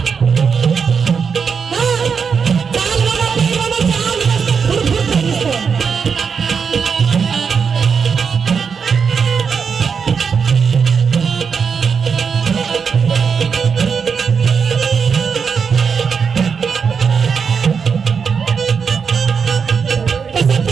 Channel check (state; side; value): quieter; left; 6.1 dB